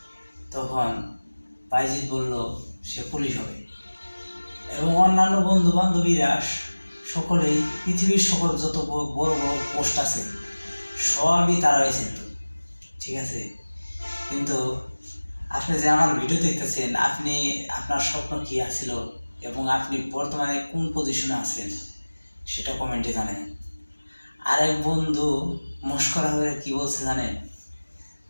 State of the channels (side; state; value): both; inverted; correlation -1.00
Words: তখন বাইজিৎ বলল সে পুলিশ হবে। এবং অন্যান্য বন্ধু বান্ধবীরা সকলেই পৃথিবীর সকল যত বড় বড় পোস্ট আছে সবই তারা হয়েছেন, ঠিক আছে। কিন্তু আপনি যে আমার ভিডিও দেখতেছেন, আপনি আপনার স্বপ্ন কি আছিল এবং আপনি বর্তমানে কোন পজিশনে আছেন সেটা কমেন্টে জানেন। আরেক বন্ধু মস্করা হয়ে কি বলছে জানেন?